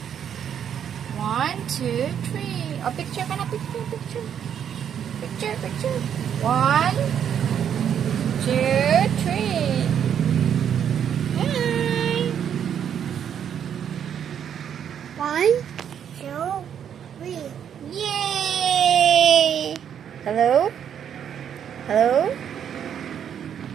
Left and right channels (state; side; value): quieter; left; 8.8 dB